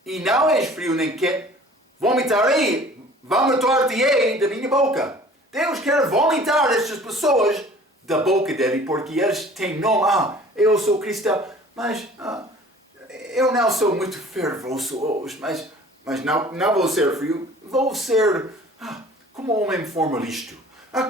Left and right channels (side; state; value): both; normal; correlation 0.48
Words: e não és frio nem quente, vomitar-te-ei da minha boca. Deus quer vomitar estas pessoas da boca dele, porque eles têm nome. Eu sou cristão, mas eu não sou muito fervoroso hoje, mas Mas não vou ser frio, vou ser como homem formalista,